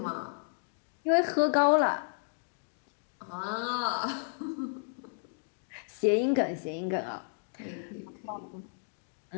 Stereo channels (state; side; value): silent; right; digital silence